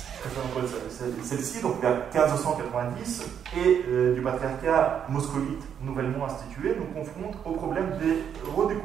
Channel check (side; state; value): left; quieter; 8.4 dB